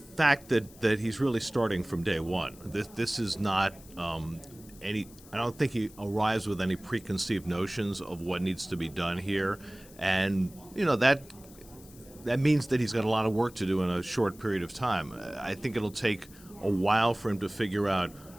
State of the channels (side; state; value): left; noise; hiss, 22 dB below the sound